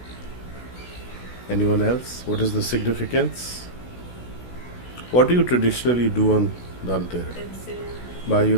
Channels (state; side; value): late; right; 16 ms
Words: anyone else? What is the significance? What do you traditionally do on Dhanteras? Buy